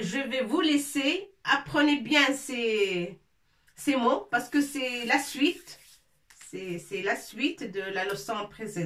vais vous laisser. Apprenez bien ces mots parce que c'est la suite. C'est la suite de la leçon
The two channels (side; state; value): both; identical; correlation 1.00